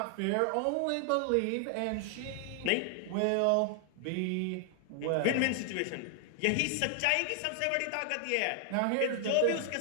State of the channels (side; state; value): both; different; correlation 0.00